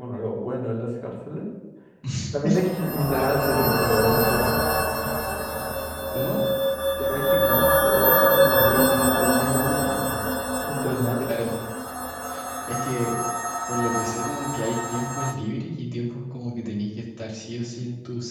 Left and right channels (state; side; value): identical; both; correlation 1.00